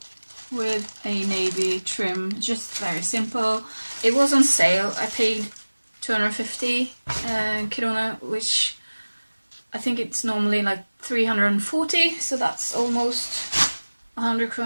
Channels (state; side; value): inverted; both; correlation -1.00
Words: with a navy trim, just very simple. It was on sale. I paid 250 krona, which I think it's normally like 340, so that's almost 100